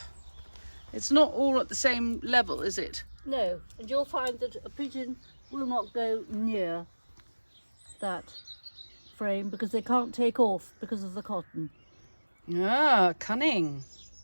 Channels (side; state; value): both; inverted; correlation -1.00